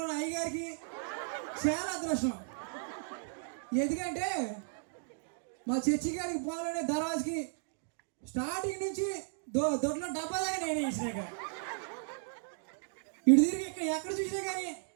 ఉన్న అయ్యగారికి చాలా అదృష్టం. ఎందుకంటే మా చర్చి గారికి పోవాలనే దర్వాజకి స్టార్టింగ్ నుంచి దొడ్లో డబ్బా దాకా నేనే ఇచ్చినాక ఇటు తిరిగి ఇక్కడ ఎక్కడ చూసినా కానీ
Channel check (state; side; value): silent; left; digital silence